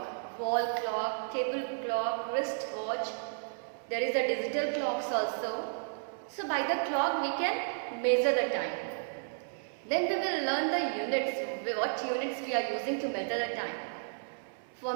wall clock, table clock, wrist watch. There is the digital clocks also. So by the clock we can measure the time. Then we will learn the units, what units we are using to measure the time. For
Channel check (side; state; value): left; silent; 56 dB below the other